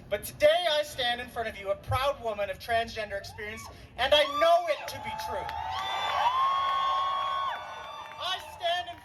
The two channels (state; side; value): identical; both; correlation 1.00